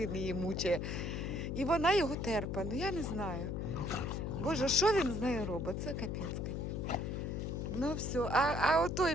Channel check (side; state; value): left; noise; hum, 2 dB below the sound